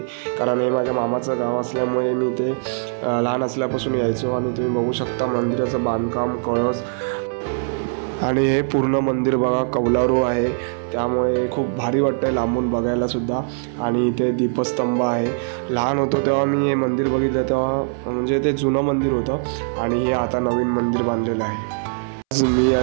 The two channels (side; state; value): left; silent; 65 dB below the other